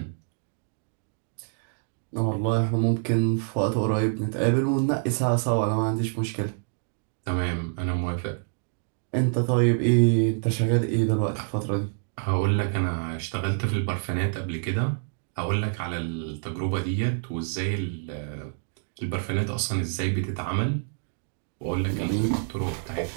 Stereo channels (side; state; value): left; silent; digital silence